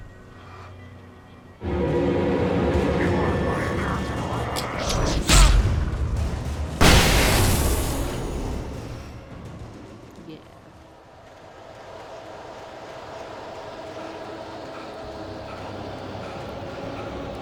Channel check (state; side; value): identical; both; correlation 1.00